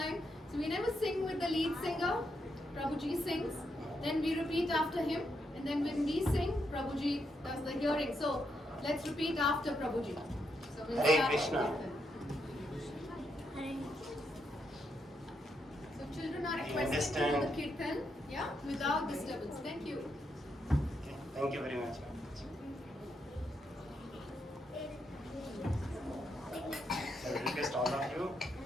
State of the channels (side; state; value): both; normal; correlation 0.80